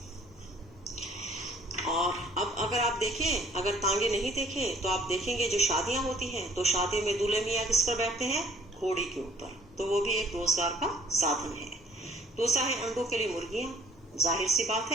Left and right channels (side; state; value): both; normal; correlation 0.57